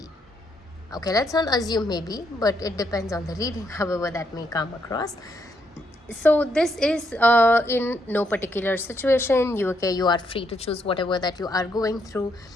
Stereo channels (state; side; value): normal; both; correlation 0.76